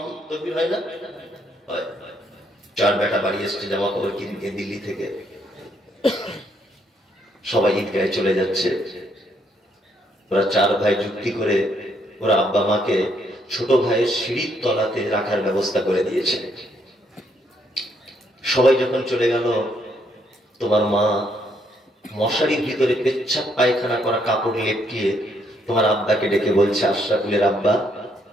তাকবীর হয় না? 4 বেটা বাড়ি এসছে জামা কাপড় কিনতে দিল্লি থেকে। সবাই ঈদগাহে চলে যাচ্ছে। ওরা 4 ভাই যুক্তি করে ওরা আব্বা মাকে ছোট ভাইয়ের সিঁড়ির তলাতে রাখার ব্যবস্থা করে দিয়েছে। সবাই যখন চলে গেল, তোমার মা মশারির ভিতরে পেচ্ছাপ পায়খানা করা কাপড় লেপটিয়ে তোমার আব্বাকে ডেকে বলছে, আশরাফুলের আব্বা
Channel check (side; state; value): both; normal; correlation 0.72